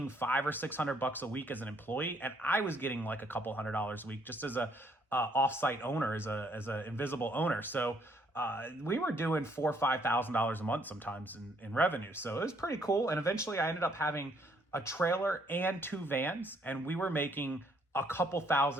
$500 or $600 a week as an employee. And I was getting like a couple $100 a week just as a offsite owner, as a invisible owner. So we were doing $4,000 or $5,000 a month sometimes in revenue. So it was pretty cool. And eventually I ended up having a trailer and 2 vans, and we were making a couple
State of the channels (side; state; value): both; normal; correlation 0.67